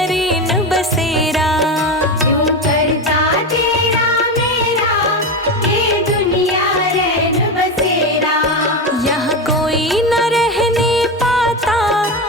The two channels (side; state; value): both; normal; correlation 0.17